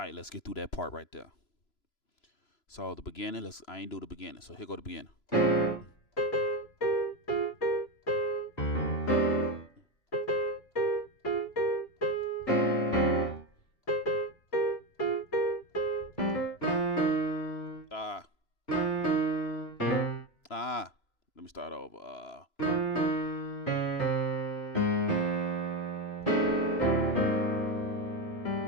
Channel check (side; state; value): right; late; 3.0 ms